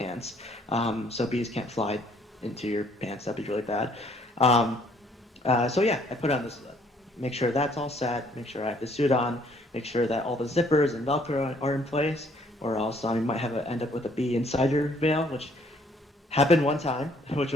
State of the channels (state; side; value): normal; both; correlation 0.63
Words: so bees can't fly into your pants. That'd be really bad. Um, so yeah, I put on this, make sure that's all set, make sure I have the suit on, make sure that all the zippers and Velcro are in place, or else you might end up with a bee inside your veil, which happened one time, which